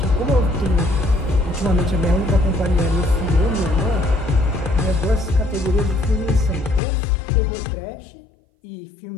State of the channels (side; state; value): right; drops out; at 6.8 s